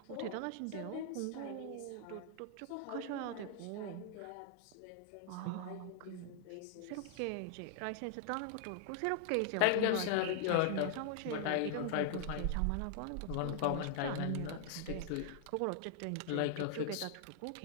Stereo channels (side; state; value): both; different; correlation 0.00